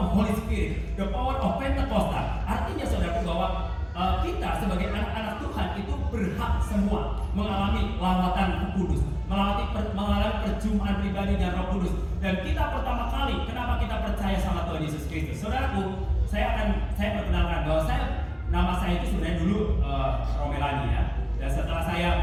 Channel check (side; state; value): both; identical; correlation 1.00